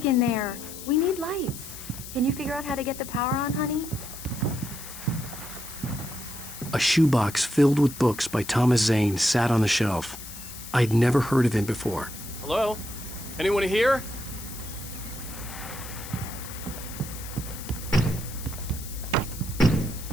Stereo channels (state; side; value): noise; left; hiss, 12 dB below the sound